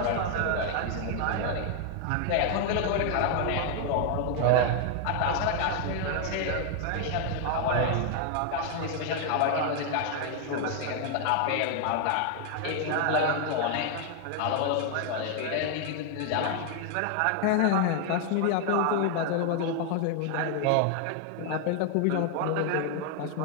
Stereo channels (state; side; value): different; both; correlation 0.00